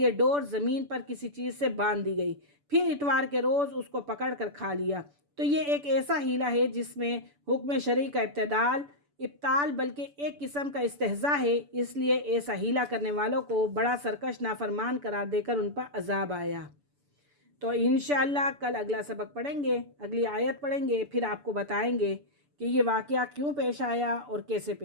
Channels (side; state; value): left; late; 6.9 ms